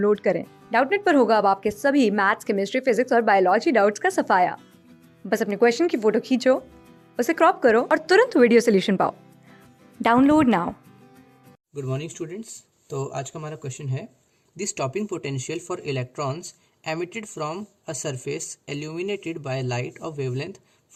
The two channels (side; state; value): both; identical; correlation 1.00